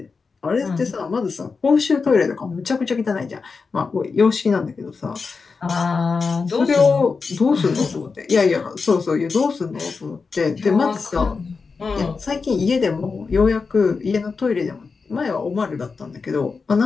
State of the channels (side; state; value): right; quieter; 4.7 dB